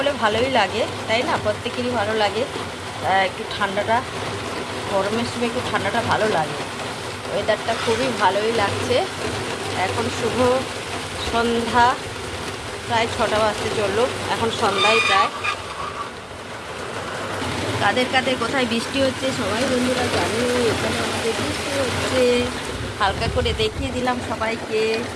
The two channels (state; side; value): identical; both; correlation 1.00